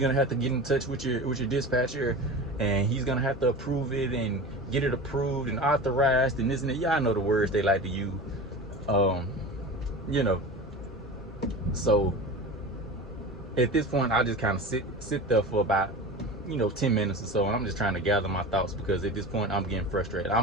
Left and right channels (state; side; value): normal; both; correlation 0.31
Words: have to get in touch with your dispatcher, and he's gonna have to approve it and get it approved and authorized and this and that. Y'all know the words they like to use. You know. So at this point, I just kind of sit there for about, you know, 10 minutes or so, and I'm just trying to gather my thoughts, because at this point I'm getting frustrated.